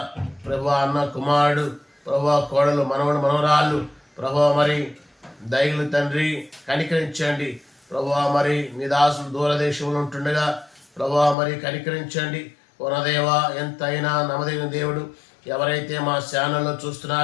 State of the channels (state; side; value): drops out; right; at 11.4 s